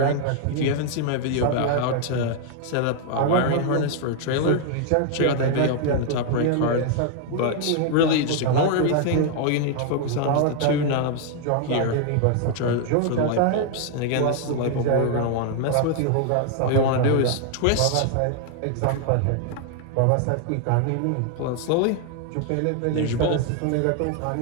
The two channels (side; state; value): both; different; correlation 0.00